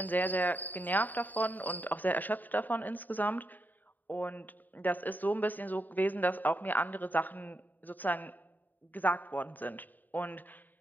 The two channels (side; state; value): right; late; 0.087 ms